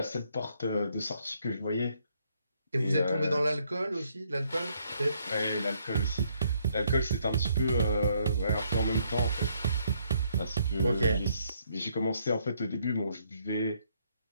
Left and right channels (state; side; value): inverted; both; correlation -0.70